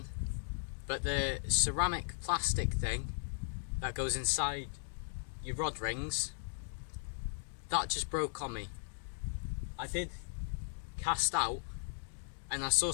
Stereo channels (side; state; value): right; silent; digital silence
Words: but the ceramic plastic thing that goes inside your rod rings, that just broke on me. I did cast out and I saw